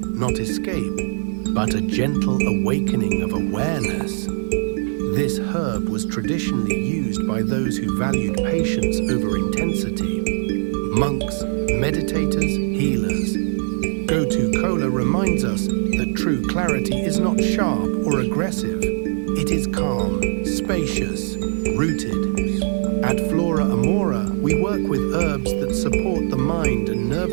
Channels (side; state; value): left; silent; digital silence